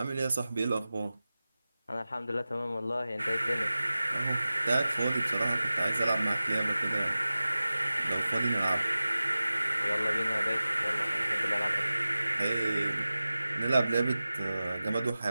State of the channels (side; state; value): both; inverted; correlation -0.96